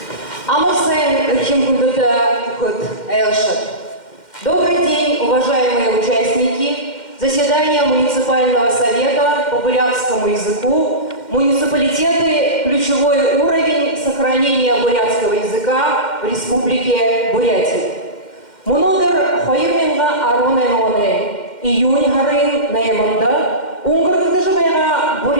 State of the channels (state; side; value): late; right; 2.1 ms